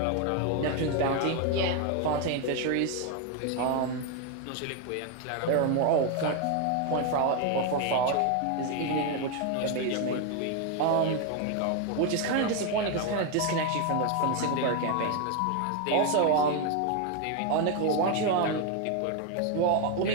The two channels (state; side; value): different; both; correlation 0.01